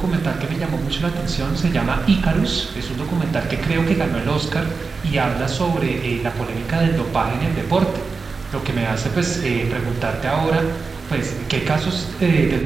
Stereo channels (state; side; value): quieter; left; 4.6 dB